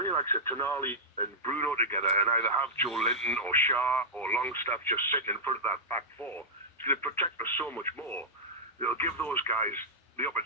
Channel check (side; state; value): both; normal; correlation -0.09